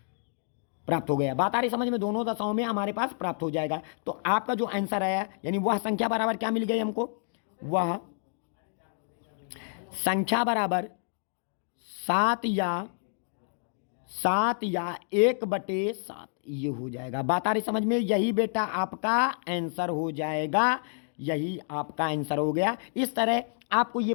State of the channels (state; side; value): silent; right; digital silence